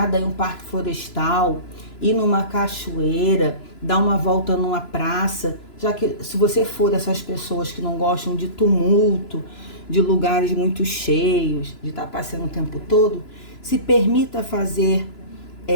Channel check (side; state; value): right; late; 2.9 ms